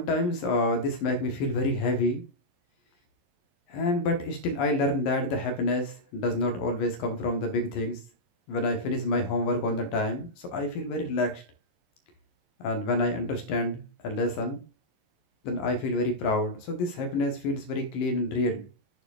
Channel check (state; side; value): late; right; 11 ms